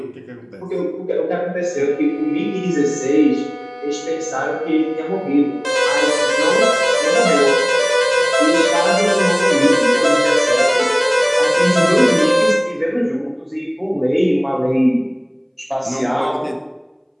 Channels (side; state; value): both; identical; correlation 1.00